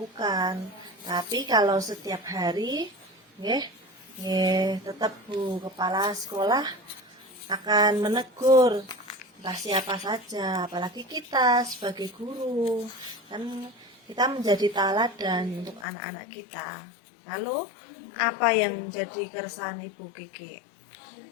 Tapi kalau setiap hari, nggih, tetap Bu Kepala Sekolah akan menegur entah siapa saja, apalagi kita sebagai guru, kan kita menjadi teladan untuk anak-anak kita. Lalu apa yang jadi keresahan Ibu Kiki?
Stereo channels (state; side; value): drops out; right; at 15.9 s